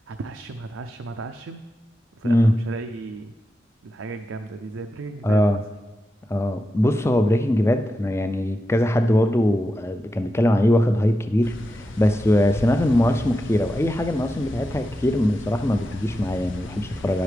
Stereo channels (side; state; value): both; normal; correlation 0.89